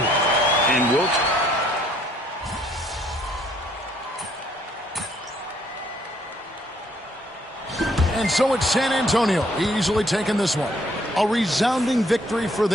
And Wilt. And so it's San Antonio easily taking this one. A resounding victory for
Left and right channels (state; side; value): normal; both; correlation 0.66